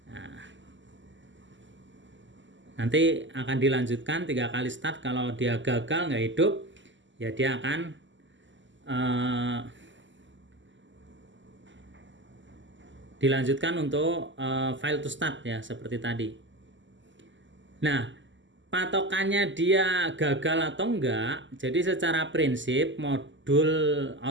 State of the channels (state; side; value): late; left; 0.54 ms